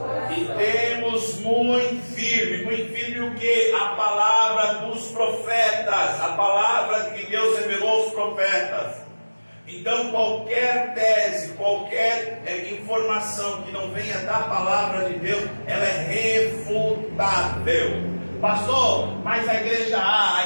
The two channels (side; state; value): both; inverted; correlation -1.00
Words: E temos muito firme o que? A palavra dos profetas, a palavra que Deus revelou aos profetas. Então qualquer tese, qualquer informação que não venha da palavra de Deus, ela é refutável. Pastor, mas a igreja A,